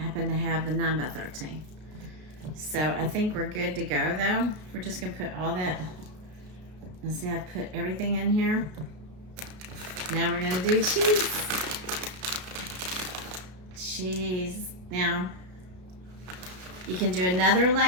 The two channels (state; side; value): late; left; 33 ms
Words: to have the 9x13. So I think we're good to go though. We're just gonna put all that. Let's see, I've put everything in here. Now we're gonna do cheese. Now, you can do another